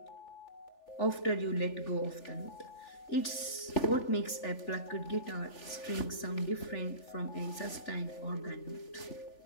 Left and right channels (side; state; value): right; late; 3.4 ms